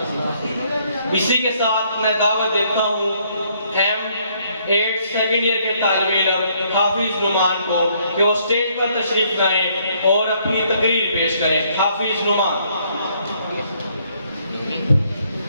اسی کے ساتھ میں دعوت دیتا ہوں M8 سیکنڈ ایئر کے طالب علم حافظ نعمان کو کہ وہ سٹیج پر تشریف لائیں اور اپنی تقریر پیش کریں۔ حافظ نعمان۔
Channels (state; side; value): inverted; both; correlation -0.67